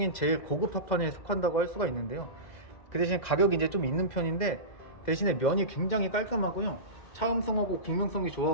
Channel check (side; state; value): right; late; 2.0 ms